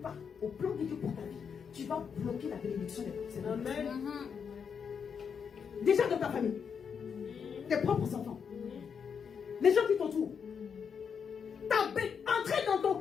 au plan de Dieu pour ta vie, tu vas bloquer la bénédiction des personnes. Amen. Déjà dans ta famille, tes propres enfants, les gens qui t'entourent. Entrer dans ton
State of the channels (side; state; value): right; quieter; 6.7 dB